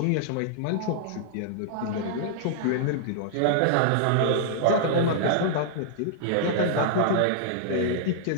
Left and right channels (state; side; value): different; both; correlation -0.01